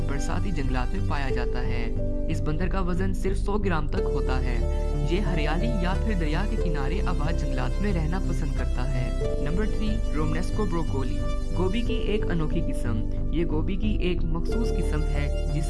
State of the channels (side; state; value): both; identical; correlation 1.00